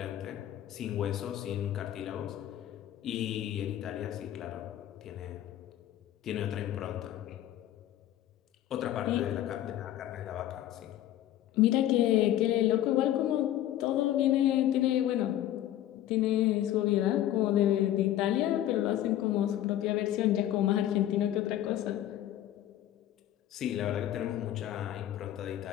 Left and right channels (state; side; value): quieter; right; 12.6 dB